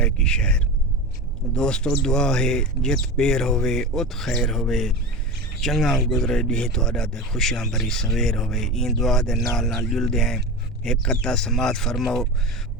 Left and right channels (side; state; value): both; normal; correlation 0.27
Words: شہر۔ دوستو دعا ہے جت پیر ہوئے ات خیر ہوئے، چنگا گزرے ڈی تہاڈا تے خوشیاں بھری سویر ہوئے۔ این دعا دے نال جلدے ہیں ایک قطع سماعت فرماؤ،